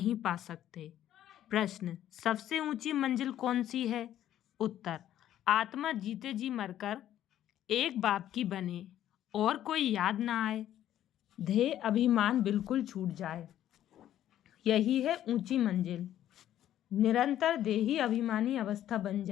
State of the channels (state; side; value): quieter; right; 11.8 dB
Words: पा सकते। प्रश्न, सबसे ऊंची मंजिल कौन सी है? उत्तर, आत्मा जीते जी मरकर एक बाप की बने और कोई याद ना आए, देह अभिमान बिल्कुल छूट जाए, यही है ऊंची मंजिल। निरंतर देही अभिमानी अवस्था बन